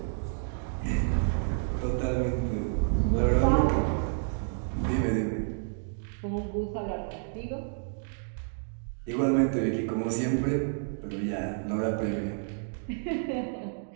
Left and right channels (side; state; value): left; silent; digital silence